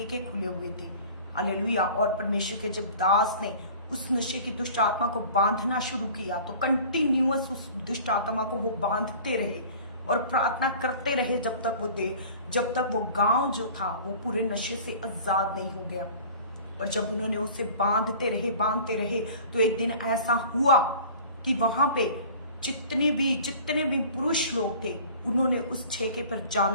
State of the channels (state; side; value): inverted; both; correlation -0.44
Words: खुले हुए थे, हालेलुया। और परमेश्वर के जब दास ने उस नशे की दुष्ट आत्मा को बांधना शुरू किया तो कंटिन्यूअस उस दुष्ट आत्मा को वो बांधते रहे और प्रार्थना करते रहे जब तक वो गांव जो था वो पूरे नशे से आजाद नहीं हो गया। और जब उन्होंने उसे बांधते रहे तो एक दिन ऐसा हुआ कि वहां पे जितने भी पुरुष लोग थे उन्होंने उस ठेके पर